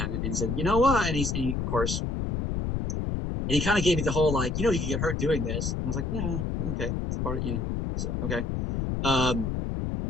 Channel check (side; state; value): left; noise; rumble, 1 dB below the sound